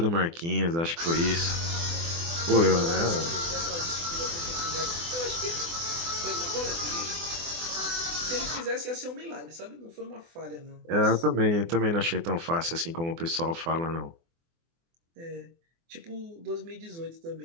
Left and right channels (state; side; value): late; left; 24 ms